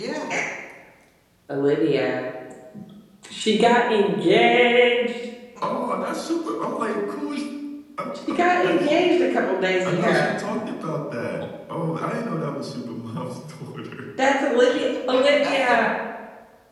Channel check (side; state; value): both; identical; correlation 1.00